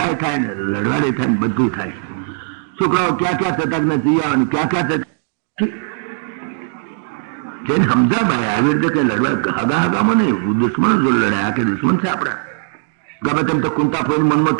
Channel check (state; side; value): silent; left; digital silence